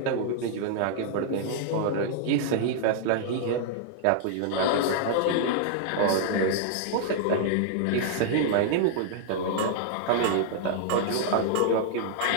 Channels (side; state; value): both; different; correlation -0.01